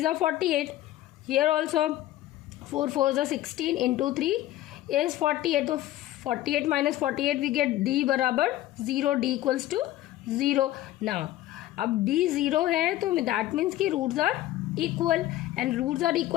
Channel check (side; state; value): right; quieter; 14.8 dB